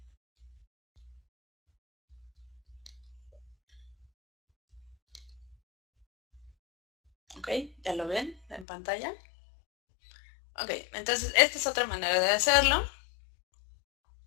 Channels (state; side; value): drops out; right; at 8.7 s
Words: Ok, ¿ya lo ven en pantalla? Ok, entonces esta es otra manera de hacerlo.